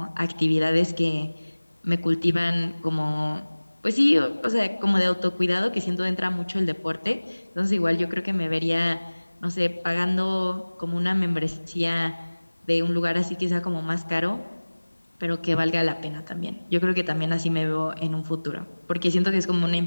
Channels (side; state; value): both; inverted; correlation -1.00